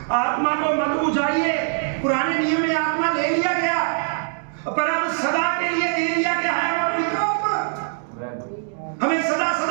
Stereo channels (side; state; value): left; silent; 64 dB below the other